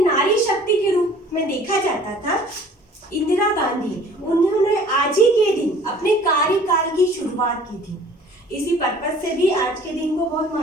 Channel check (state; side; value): normal; both; correlation 0.51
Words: नारी शक्ति के रूप में देखा जाता था, इंदिरा गांधी, उन्होंने आज ही के दिन अपने कार्यकाल की शुरुआत की थी। इसी पर्पस से भी आज के दिन को बहुत